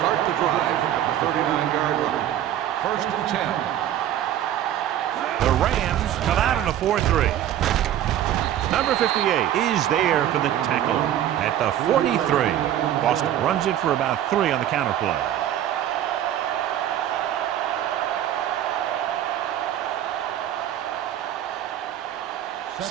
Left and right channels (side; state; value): left; quieter; 11.5 dB